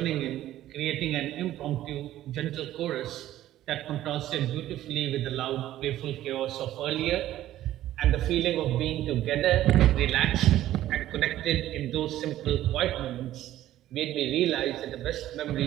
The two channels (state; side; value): quieter; left; 13.6 dB